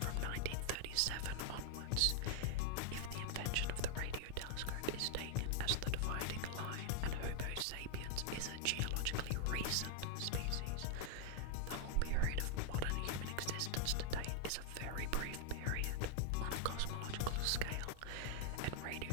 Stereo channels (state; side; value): different; both; correlation 0.00